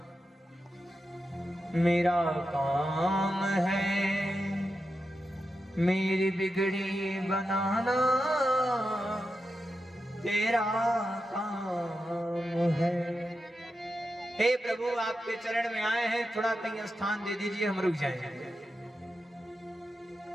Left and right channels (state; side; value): normal; both; correlation 0.89